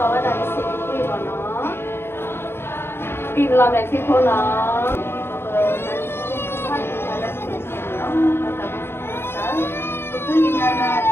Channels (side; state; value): right; late; 0.11 ms